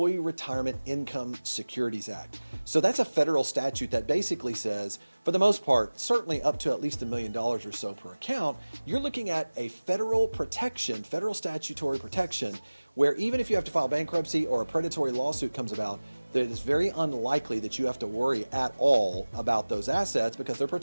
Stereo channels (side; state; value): both; inverted; correlation -1.00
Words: Retirement Income Securities Act. So that's a federal statute that basically says, for the most part, certainly up to at least $1 million or so per account, you're looking at a federal protection, federal statutory protection, where even if you have to file bankruptcy or a predatory lawsuit comes about, it is very unlikely that you have to worry at all about those assets because they're